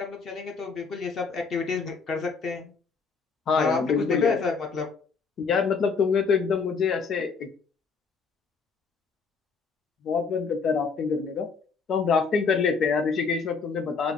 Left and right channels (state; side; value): quieter; right; 5.2 dB